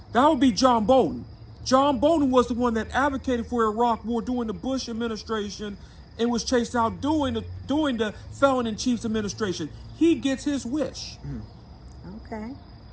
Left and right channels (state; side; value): identical; both; correlation 1.00